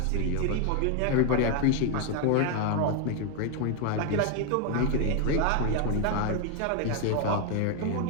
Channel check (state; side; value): different; both; correlation 0.01